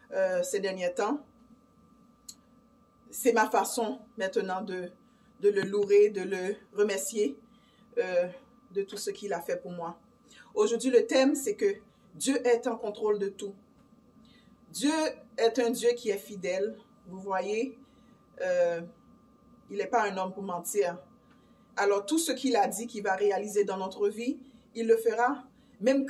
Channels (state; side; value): identical; both; correlation 1.00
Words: ces derniers temps. C'est ma façon maintenant de le louer, de le remercier de tout ce qu'il a fait pour moi. Aujourd'hui, le thème, c'est que Dieu est en contrôle de tout. Dieu est un Dieu qui est fidèle. Vous voyez, il n'est pas un homme pour mentir. Alors, tout ce qu'il a dit qu'il va réaliser dans notre vie, il le fera. Même